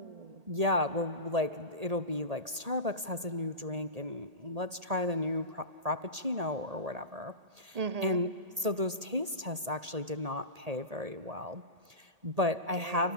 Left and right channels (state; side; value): late; left; 1.8 ms